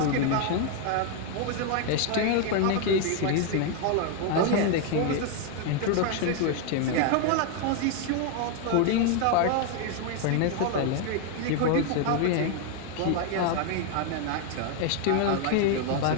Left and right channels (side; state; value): both; different; correlation 0.01